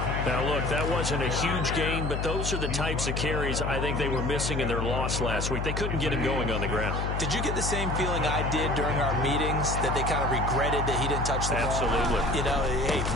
Now, look, that wasn't a huge gain, but those are the types of carries I think they were missing in their loss last week. They couldn't get him going on the ground. Did you get the same feeling I did during our meetings, that they kind of regretted that he didn't touch the ball? Absolutely. You know, hey,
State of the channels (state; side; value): noise; left; hum, 1 dB below the sound